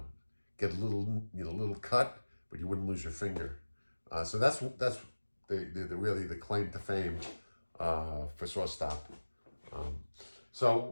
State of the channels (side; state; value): both; inverted; correlation -1.00